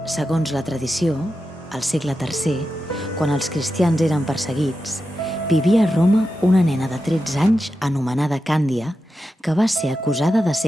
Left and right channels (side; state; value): both; normal; correlation 0.90